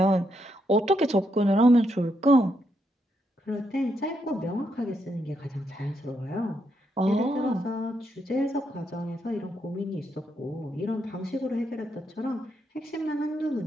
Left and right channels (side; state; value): both; normal; correlation 0.79